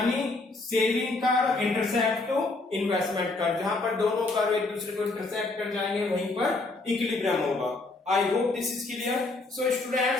saving curve intersect to investment curve, जहां पर दोनों कर्व एक दूसरे को इंटरसेक्ट कर जाएंगे वहीं पर इक्विलिब्रियम होगा. I hope this is clear. So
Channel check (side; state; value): right; quieter; 3.2 dB